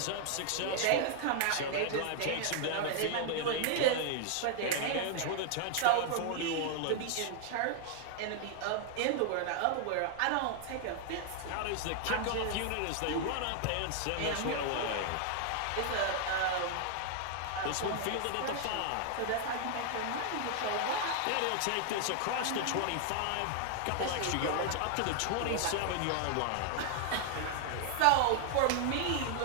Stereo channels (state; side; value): different; both; correlation 0.00